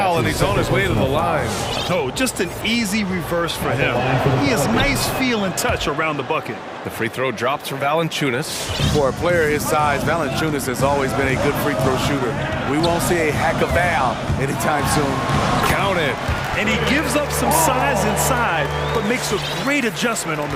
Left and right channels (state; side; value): identical; both; correlation 1.00